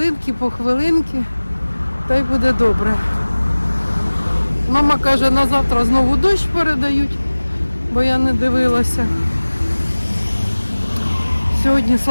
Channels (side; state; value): both; inverted; correlation -1.00